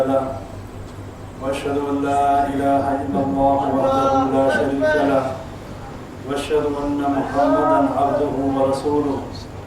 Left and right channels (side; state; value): both; identical; correlation 1.00